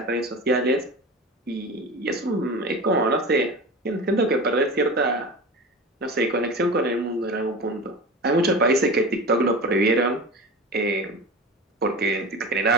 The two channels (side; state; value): both; normal; correlation 0.31